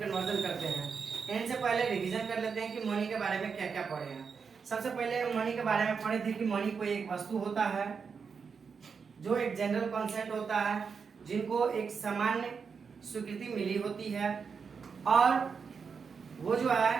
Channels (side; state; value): left; quieter; 5.8 dB